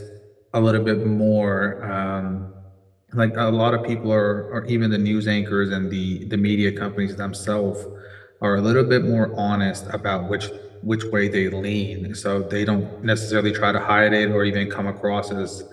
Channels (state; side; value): identical; both; correlation 1.00